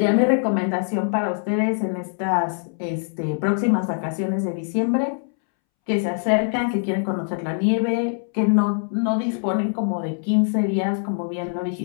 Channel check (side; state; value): right; silent; 63 dB below the other